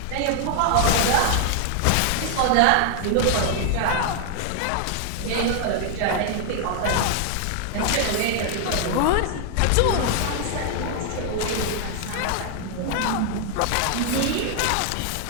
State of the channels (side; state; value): both; different; correlation 0.00